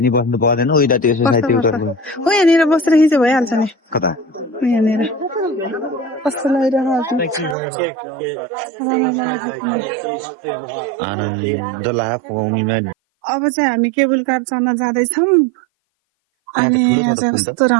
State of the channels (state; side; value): drops out; left; at 7.6 s